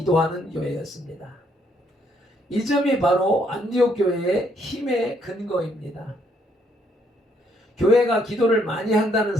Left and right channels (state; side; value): normal; both; correlation 0.71